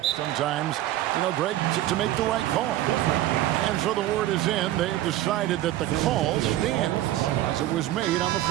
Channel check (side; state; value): left; quieter; 14.4 dB